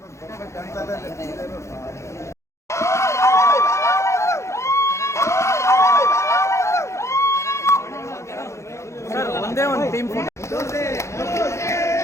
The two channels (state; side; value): late; right; 0.14 ms